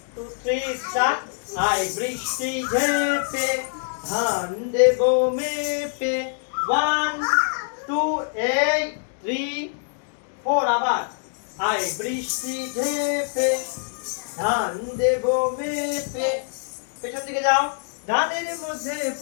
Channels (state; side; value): silent; right; 62 dB below the other